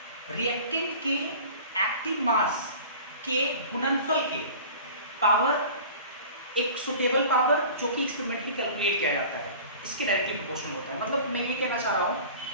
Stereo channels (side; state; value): both; inverted; correlation -0.41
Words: रिएक्टेंट के एक्टिव मास के गुणनफल के पावर, एक सुटेबल पावर जो कि एक्सपेरिमेंटली कैलकुलेट किया जाता है, इसके डायरेक्टली प्रोपोर्शनल होता है। मतलब मैं ये कहना चाह रहा हूँ